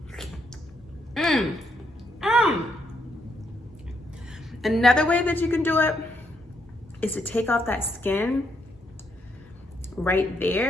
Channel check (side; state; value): both; normal; correlation 0.76